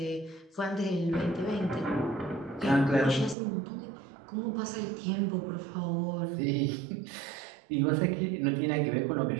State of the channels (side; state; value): left; drops out; at 3.4 s